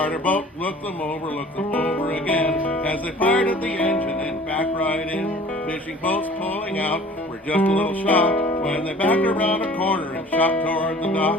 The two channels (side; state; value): both; normal; correlation 0.47